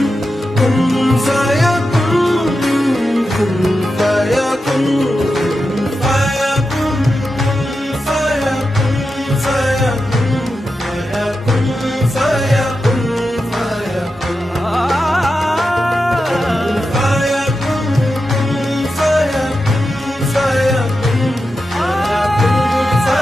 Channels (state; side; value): normal; both; correlation 0.89